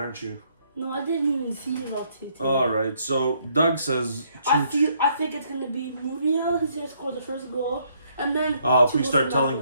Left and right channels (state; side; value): inverted; both; correlation -0.69